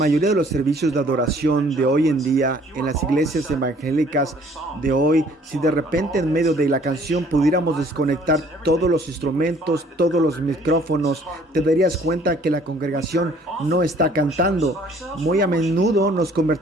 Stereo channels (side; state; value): both; normal; correlation 0.57